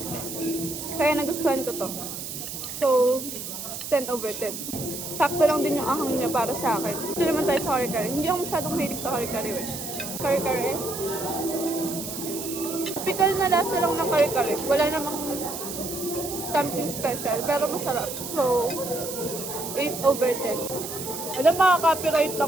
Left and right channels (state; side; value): noise; right; hiss, 7 dB below the sound